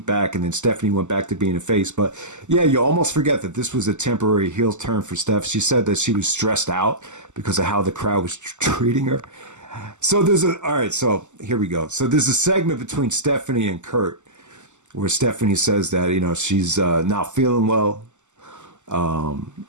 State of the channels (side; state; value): left; late; 0.84 ms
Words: back, and then Stephanie went back to being a face. But yeah, you almost forget that this was a temporary heel turn for Steph. She said that she was stressed out because of how the crowd was treating her. So so here we go. So there's a segment between Stephanie and Kurt where Stephanie says that, she's not feeling well.